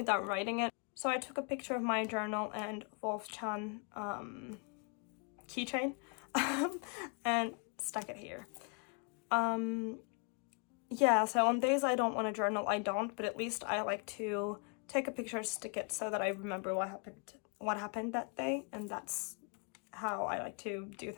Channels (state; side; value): quieter; right; 36.8 dB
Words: writing it. So I took a picture of my journal and Wolf-chan keychain and stuck it here. Yeah, so on days I don't want to journal, I don't, but at least I like to take a picture, stick it so that I remember what happened that day, and that's how I like to do